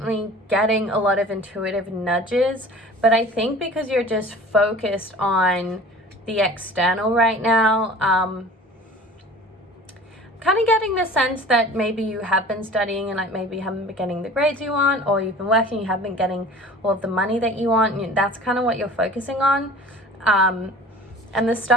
getting a lot of intuitive nudges, but I think because you're just focused on the external right now, kind of getting the sense that maybe you have been studying and like maybe you haven't been getting the grades you want, or you've been working, you haven't been getting all of the money that you want. And that's kind of what you're focusing on. And the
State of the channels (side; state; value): both; normal; correlation 0.43